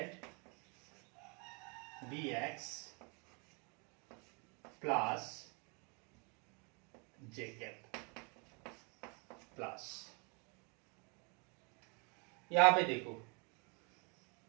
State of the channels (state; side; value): quieter; left; 33.6 dB